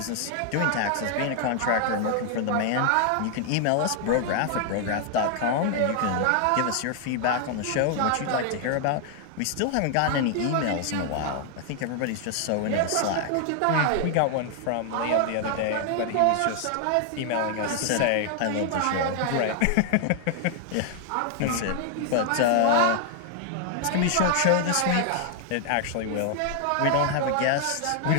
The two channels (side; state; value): both; different; correlation 0.00